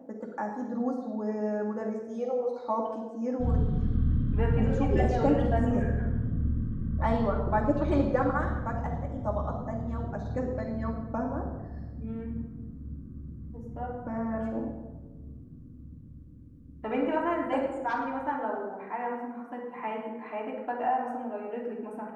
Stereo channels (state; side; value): identical; both; correlation 1.00